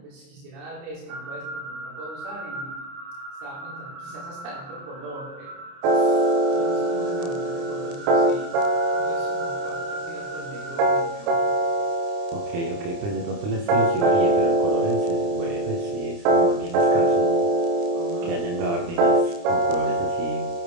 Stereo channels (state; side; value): late; left; 29 ms